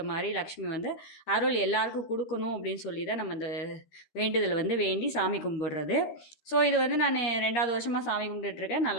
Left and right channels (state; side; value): late; right; 13 ms